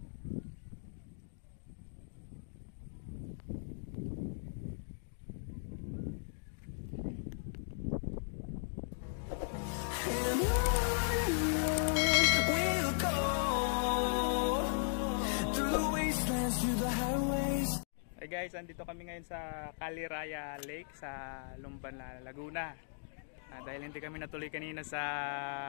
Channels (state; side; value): silent; right; digital silence